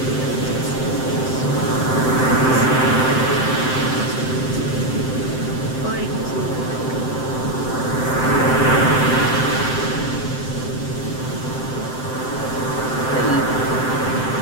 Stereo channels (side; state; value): right; late; 7.8 ms